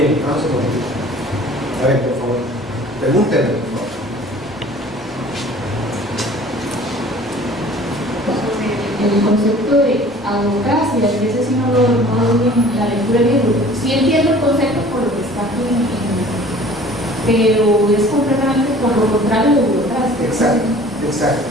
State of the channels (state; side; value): noise; right; rumble, 27 dB below the sound